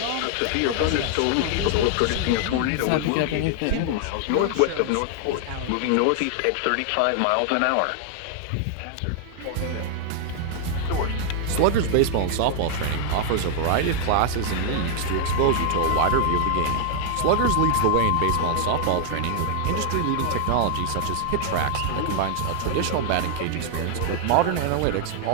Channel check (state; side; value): different; both; correlation 0.00